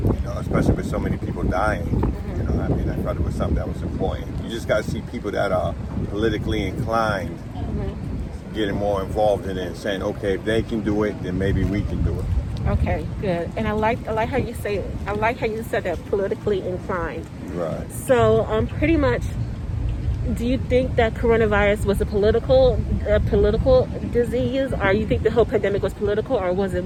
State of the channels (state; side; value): identical; both; correlation 1.00